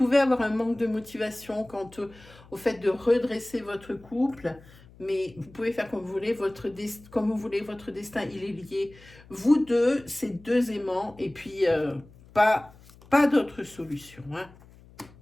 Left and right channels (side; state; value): left; noise; hum, 24 dB below the sound